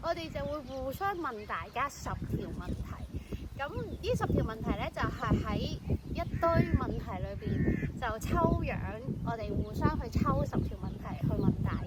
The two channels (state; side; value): identical; both; correlation 1.00